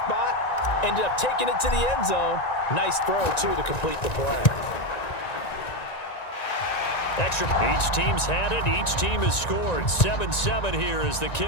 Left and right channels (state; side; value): late; right; 1.9 ms